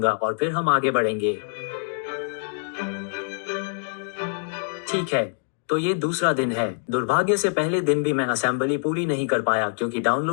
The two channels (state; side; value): silent; right; digital silence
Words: और फिर हम आगे बढ़ेंगे। ठीक है, तो ये दूसरा दिन है। दुर्भाग्य से पहले दिन भी मैं असेंबली पूरी नहीं कर पाया क्योंकि